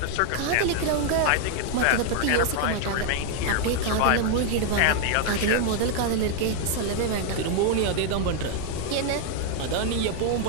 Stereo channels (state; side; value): different; both; correlation 0.00